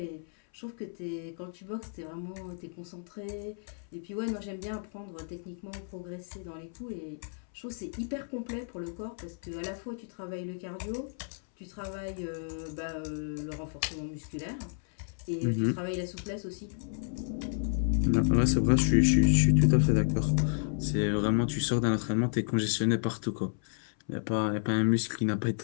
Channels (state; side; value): silent; right; 57 dB below the other